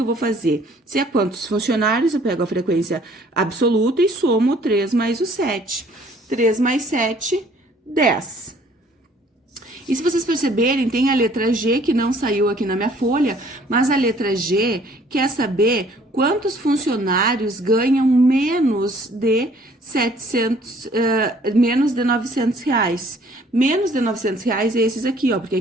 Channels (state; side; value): normal; both; correlation 0.58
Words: vou fazer? Se é quantos funcionários, eu pego a frequência absoluta e somo o 3 mais o 7. 3 mais 7, 10. E se vocês perceberem, tem a letra G que não saiu aqui na minha folha, mas a letra G quer saber quantos funcionários ganham menos de 900 reais. Menos de 900 reais é esses aqui, ó, porque